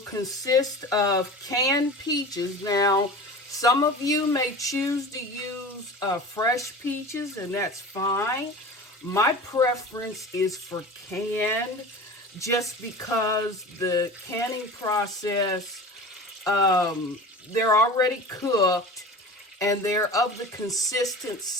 of canned peaches. Now, some of you may choose to use fresh peaches, and that's fine. My preference is for canned, just because the canning process, they're already cooked and they're of the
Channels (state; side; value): normal; both; correlation 0.35